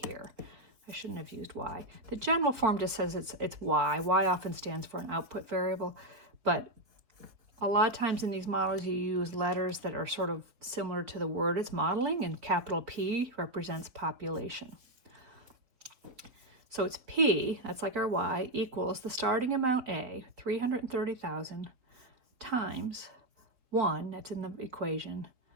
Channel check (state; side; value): late; left; 4.3 ms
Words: here. I shouldn't have used Y. The general form just says it's Y. Y often stands for an output variable, but a lot of times in these models, you use letters that are sort of similar to the word it's modeling, and capital P represents population. So it's P, that's like our Y, equals the starting amount A, 330,000, times 1, that's in the equation,